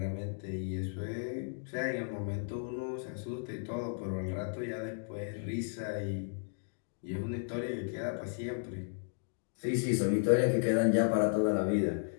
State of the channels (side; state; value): right; silent; digital silence